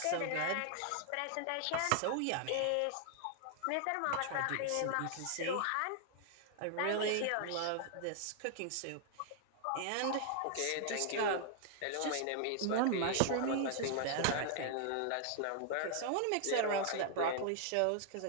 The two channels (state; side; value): different; both; correlation 0.00